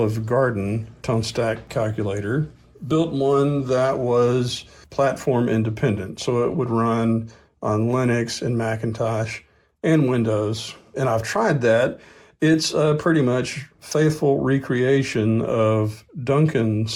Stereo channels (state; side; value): identical; both; correlation 1.00